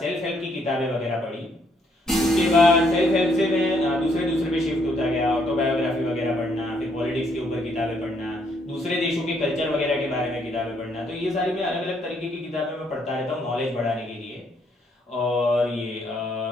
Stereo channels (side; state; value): both; normal; correlation 0.71